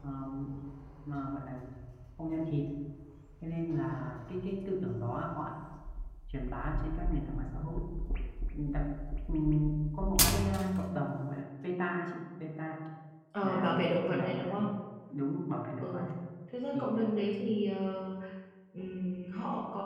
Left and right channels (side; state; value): both; identical; correlation 1.00